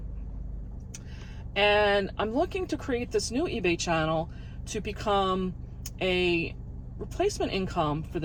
And I'm looking to create this new eBay channel to become a replacement income for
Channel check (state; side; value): identical; both; correlation 1.00